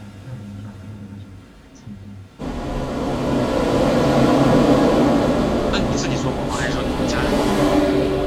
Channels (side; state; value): both; identical; correlation 1.00